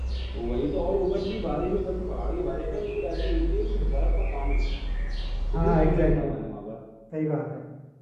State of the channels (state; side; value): identical; both; correlation 1.00